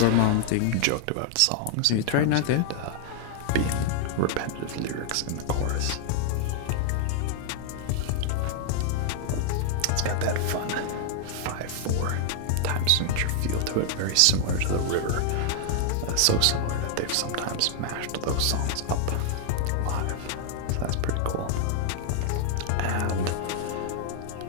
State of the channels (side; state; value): both; different; correlation 0.00